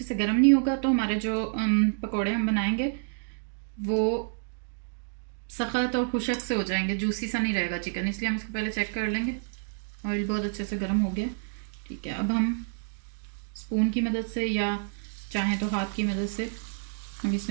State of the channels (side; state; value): left; silent; digital silence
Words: से गर्म नहीं होगा तो हमारे जो पकोड़े हम बनाएंगे वो सख्त और खुशक से हो जाएंगे, जूसी सा नहीं रहेगा चिकन। इसलिए हम इसको पहले चेक कर लेंगे। ऑयल बहुत अच्छे से गर्म हो गया, ठीक है। अब हम स्पून की मदद से या चाहें तो हाथ की मदद से हम